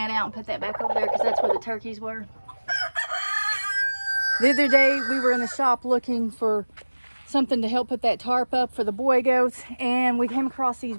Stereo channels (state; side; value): inverted; both; correlation -1.00